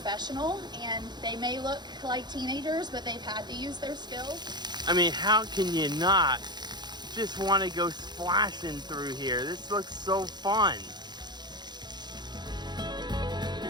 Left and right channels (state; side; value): late; left; 0.21 ms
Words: and they may look like teenagers, but they've had to use their skills. I mean, how can you not just want to go splashing through here? This looks so fun.